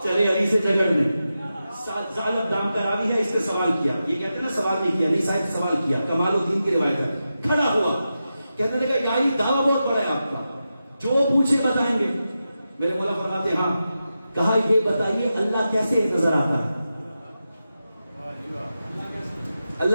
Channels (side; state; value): both; inverted; correlation -0.90